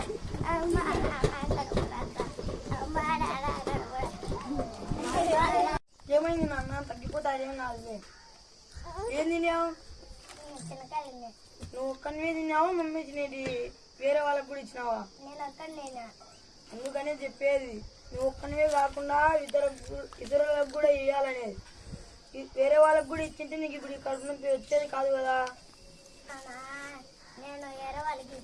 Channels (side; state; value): both; identical; correlation 1.00